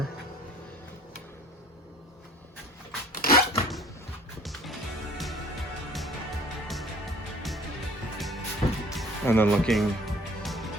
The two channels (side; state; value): both; normal; correlation 0.51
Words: And then looking